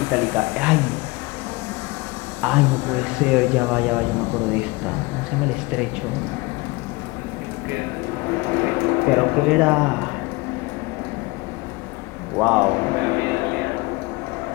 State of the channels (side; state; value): right; quieter; 23.6 dB